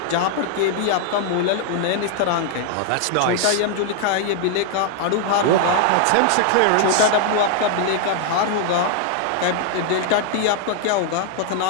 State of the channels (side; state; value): both; different; correlation 0.00